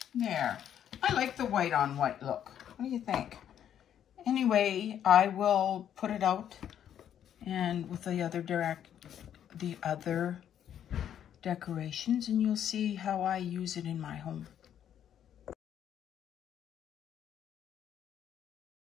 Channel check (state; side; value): quieter; right; 9.8 dB